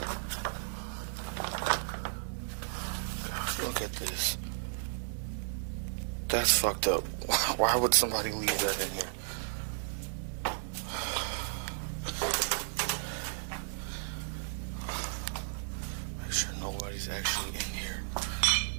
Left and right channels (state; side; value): silent; left; digital silence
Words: God, look at this. That's fucked up. Why would somebody leave that in here? Make sure nobody's actually in here.